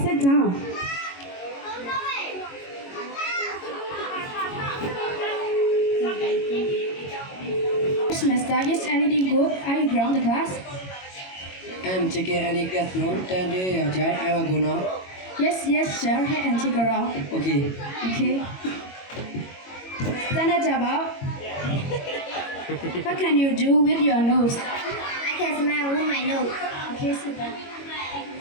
Sit down. Semester, is anything good? Are you ground the class? Em chưa kể any get no tên đi ở trái ai vào nó. Yes, sir. Head and take a round. Okay. Okay. Stand up, Jabba. What can you do with your nose? I can smell with my nose. Okay, sit down.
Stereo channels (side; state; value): right; late; 22 ms